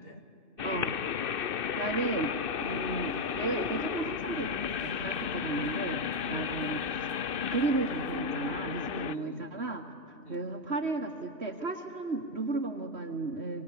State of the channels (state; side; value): late; left; 2.6 ms